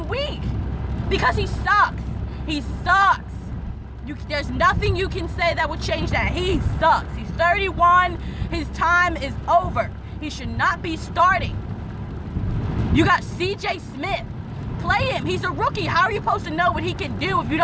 week. Because he sucks. He sucks. There's nothing you can say that would change that. He sucks. He's 31. His time is over. He should not be starting. You got CJ Smith play him. He's a rookie. How are you supposed to know what he can do if you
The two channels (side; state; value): both; identical; correlation 1.00